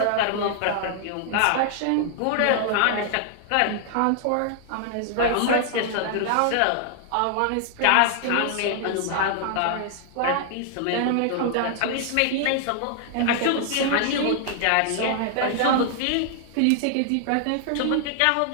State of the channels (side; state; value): both; different; correlation 0.00